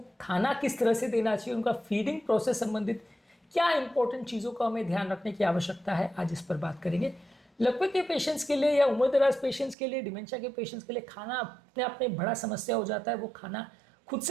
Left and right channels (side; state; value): left; drops out; at 9.8 s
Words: खाना किस तरह से देना चाहिए, उनका फीडिंग प्रोसेस संबंधित क्या इंपॉर्टेंट चीज़ों का हमें ध्यान रखने की आवश्यकता है, आज इस पर बात करेंगे। लकवे के पेशेंट्स के लिए या उम्र दराज पेशेंट्स के लिए, डिमेंशिया के पेशेंट्स के लिए खाना अपने आप में बड़ा समस्या हो जाता है। वो खाना खुद